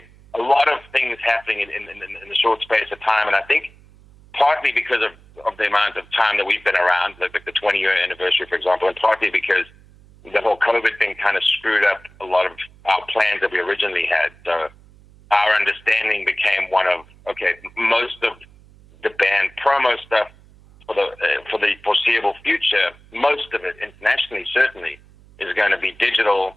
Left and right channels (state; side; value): noise; right; hum, 25 dB below the sound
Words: lot of things happening in the short space of time. And I think partly because of the amount of time that we've been around, like the 20-year anniversary, for example, and partly because the whole COVID thing kind of screwed up a lot of our plans that we originally had. So our understanding became one of, okay, most of the band promo stuff for the foreseeable future, most of it internationally certainly is going to be digital